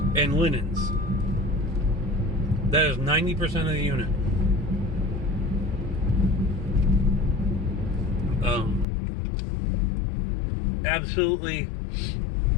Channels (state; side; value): drops out; right; at 8.8 s